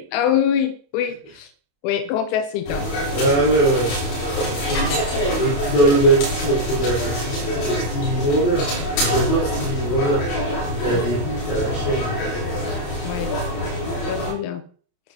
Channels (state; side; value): late; right; 28 ms